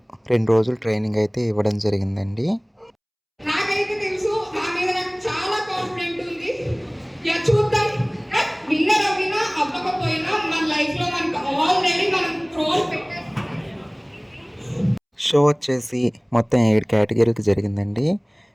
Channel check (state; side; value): identical; both; correlation 1.00